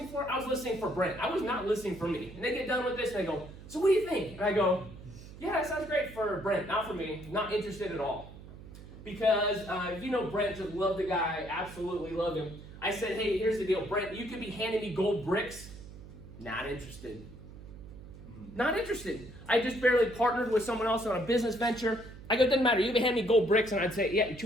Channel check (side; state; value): right; noise; hum, 16 dB below the sound